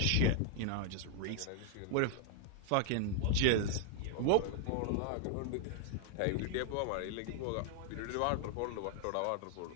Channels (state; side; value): different; both; correlation 0.00